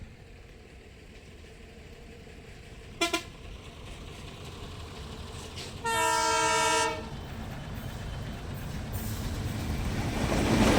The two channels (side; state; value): both; identical; correlation 1.00